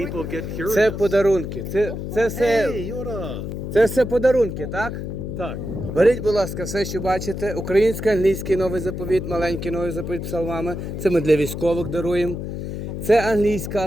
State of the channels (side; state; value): left; noise; hum, 6 dB below the sound